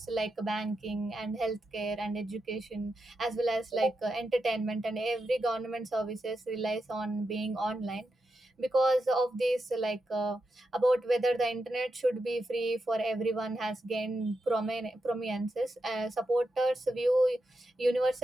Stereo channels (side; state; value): both; normal; correlation 0.87